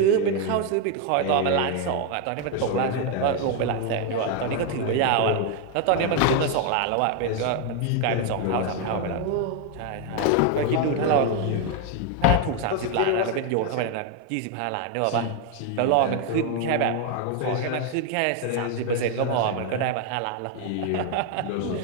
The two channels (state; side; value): different; both; correlation 0.01